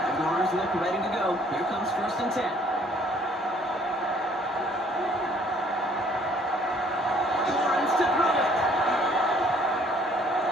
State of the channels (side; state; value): both; normal; correlation 0.60